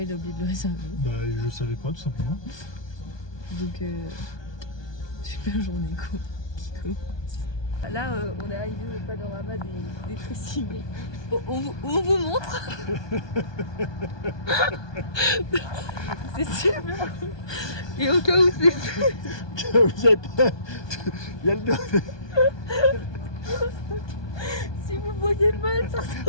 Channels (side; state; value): right; late; 1.2 ms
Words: il a oublié de le réserver. Bah, je savais pas, tout simplement. Donc, super journée qui commence. Là, on est arrivé au panorama des Tressimé. On vous montre. C'est super. Et au cas où c'est... Vous êtes pas... Il y a le dos. Si vous voyez mal, ça